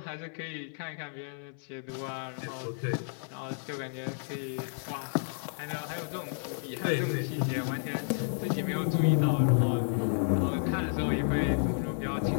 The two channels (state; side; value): silent; right; 57 dB below the other